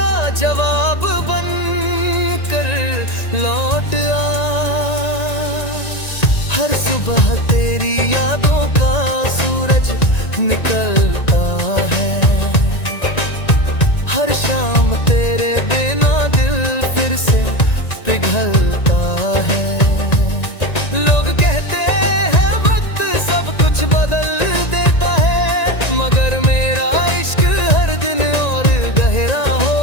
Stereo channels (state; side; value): late; right; 1.9 ms